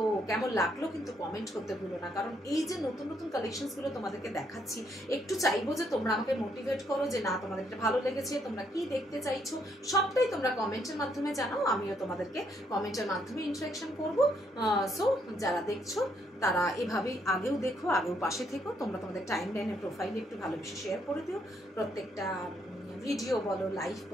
কেমন লাগলো কিন্তু কমেন্ট করতে ভুলো না, কারণ এই যে নতুন নতুন কালেকশনস গুলো তোমাদেরকে দেখাচ্ছি, একটু চাইবো যে তোমরা আমাকে মোটিভেট করো, যে না তোমাদের এটা ভালো লেগেছে, তোমরা কি দেখতে চাইছো, সবটাই তোমরা কমেন্টের মাধ্যমে জানাও, আমিও তোমাদেরকে কমেন্টের মাধ্যমে ইন্টারাকশন করবো। সো যারা দেখছো তারা এভাবেই আগেও দেখো, আগেও পাশে থেকো। তোমরা তোমাদের টাইম লাইনের প্রোফাইলে একটু ভালোবেসে শেয়ার করে দিও। প্রত্যেকটা ভিডিও বলো, লাইভ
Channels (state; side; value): normal; both; correlation 0.73